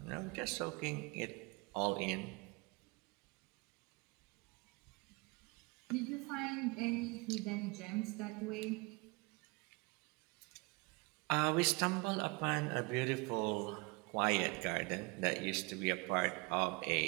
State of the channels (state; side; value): quieter; left; 27.5 dB